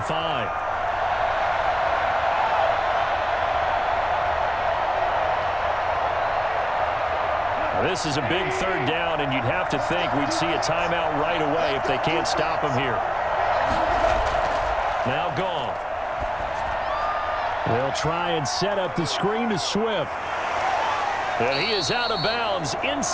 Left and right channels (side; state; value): both; identical; correlation 1.00